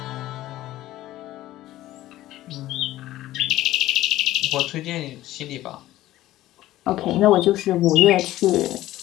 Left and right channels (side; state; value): right; quieter; 15.2 dB